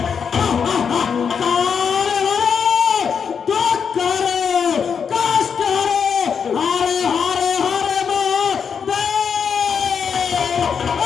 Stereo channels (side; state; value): right; quieter; 6.7 dB